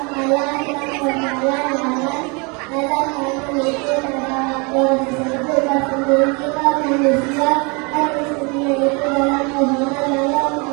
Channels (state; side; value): quieter; left; 30.9 dB